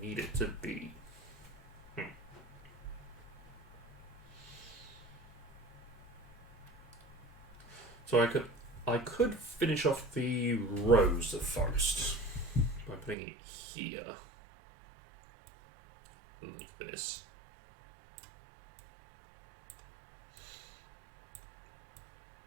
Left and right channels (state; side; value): drops out; left; at 13.2 s